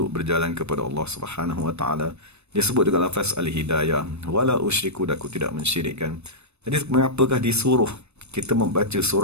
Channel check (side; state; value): left; late; 0.81 ms